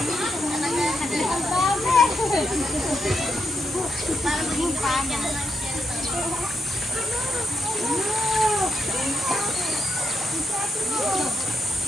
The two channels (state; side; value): normal; both; correlation 0.82